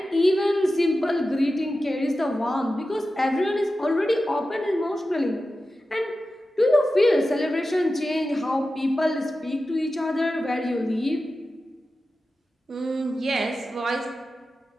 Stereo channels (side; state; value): both; normal; correlation 0.93